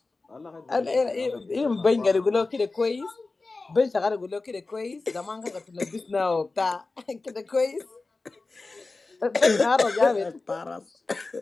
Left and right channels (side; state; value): right; quieter; 3.6 dB